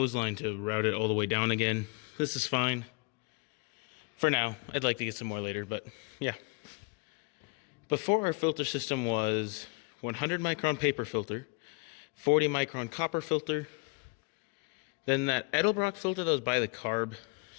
line to route it all the way down again. This is fine. For now, I'd like to get some more later, but yeah. Before, our filter system was 100 micron paper filter, 40 micron copper filter, then that Edelbrock filter that was by the carb.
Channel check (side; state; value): right; quieter; 31.6 dB